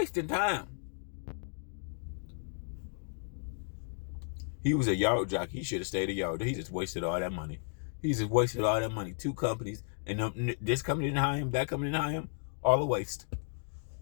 time? He was a yard jockey. He should have stayed a yard. He just wasted all that money. He just wasted all that money. 2 companies, and this company didn't hire him. That company didn't hire him. All a waste.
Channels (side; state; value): right; silent; digital silence